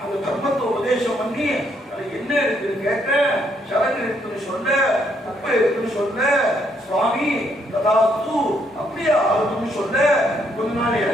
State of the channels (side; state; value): both; normal; correlation 0.72